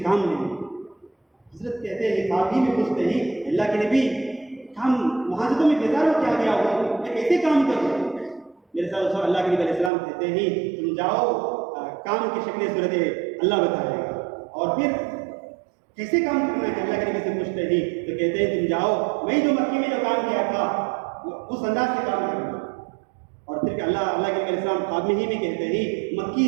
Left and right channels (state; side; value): drops out; left; at 9.9 s